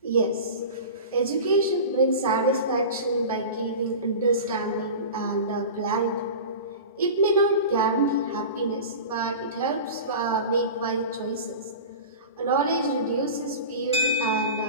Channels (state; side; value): inverted; both; correlation -0.32